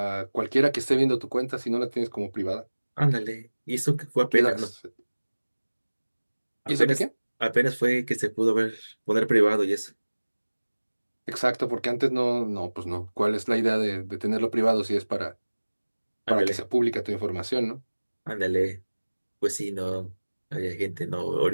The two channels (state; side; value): inverted; both; correlation -1.00